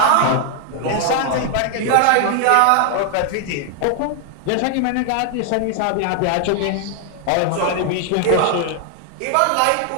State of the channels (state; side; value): different; both; correlation 0.00